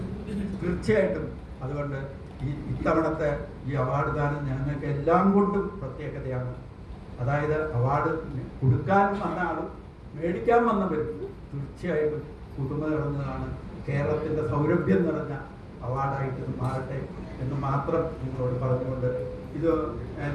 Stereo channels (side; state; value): both; identical; correlation 1.00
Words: തീർച്ചയായിട്ടും അതുകൊണ്ട് ഇത്തവണത്തെ ഈ അവാർഡ് ദാനം ഞങ്ങൾക്ക് എല്ലാം കൊണ്ടും പ്രത്യേകതയാണ്. അതായത് അവാർഡ് കൊടുക്കാൻ വന്ന ആളും മേടിക്കാൻ വന്നവരും തീർച്ചയായിട്ടും പുതുമ നിറഞ്ഞതാണ്. കേരളത്തിൻ്റെ സൗരഭ്യം നിറഞ്ഞ അവാർഡായിട്ട് മാറട്ടെ എന്ന് മാത്രം നിങ്ങളോട് പറഞ്ഞുകൊണ്ട്, ഇത്